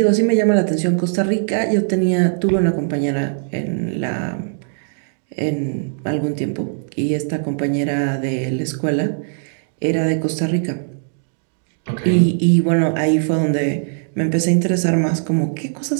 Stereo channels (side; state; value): left; silent; digital silence